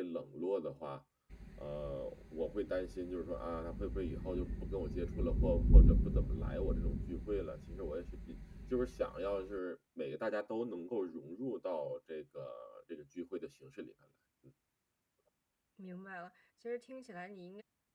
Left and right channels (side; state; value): both; identical; correlation 1.00